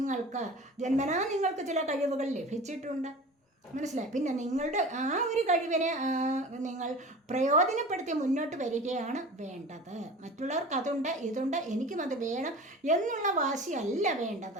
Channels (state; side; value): normal; both; correlation 0.37